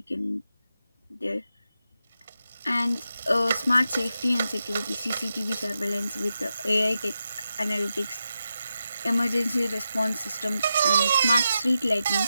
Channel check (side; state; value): both; inverted; correlation -0.88